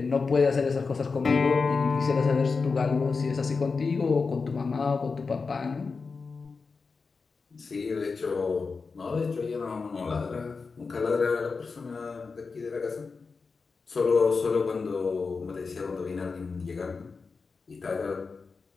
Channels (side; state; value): right; quieter; 4.6 dB